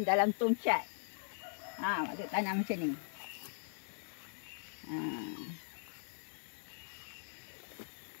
dalam tong cat. Mak Tok tanam macam ni.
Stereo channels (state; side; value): silent; right; 51 dB below the other